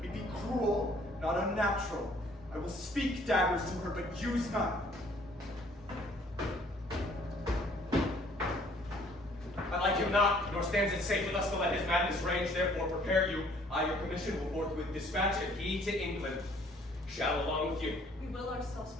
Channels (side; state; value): both; normal; correlation 0.59